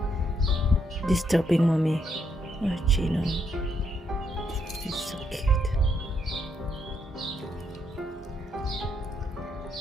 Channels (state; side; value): normal; both; correlation 0.76